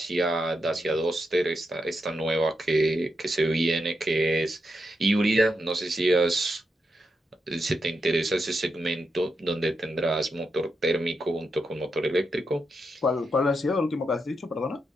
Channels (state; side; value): normal; both; correlation 0.84